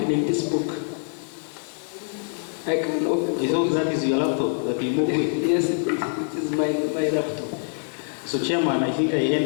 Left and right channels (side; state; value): right; silent; digital silence